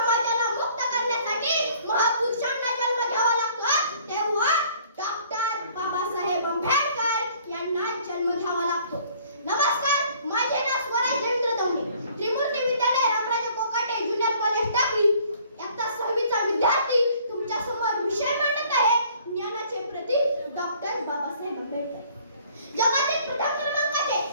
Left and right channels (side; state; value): both; inverted; correlation -0.57